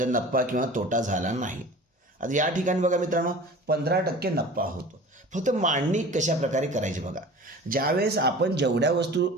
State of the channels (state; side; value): normal; both; correlation 0.40